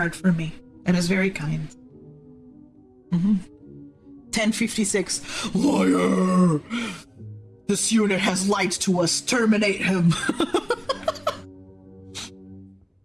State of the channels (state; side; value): identical; both; correlation 1.00